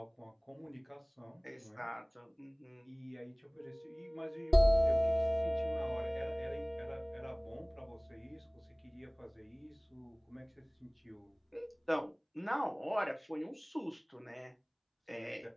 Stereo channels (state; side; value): identical; both; correlation 1.00